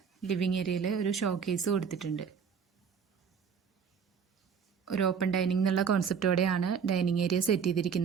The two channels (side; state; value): left; quieter; 6.7 dB